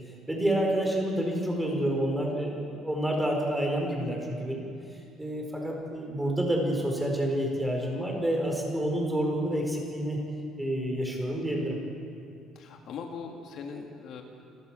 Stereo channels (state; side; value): normal; both; correlation 0.77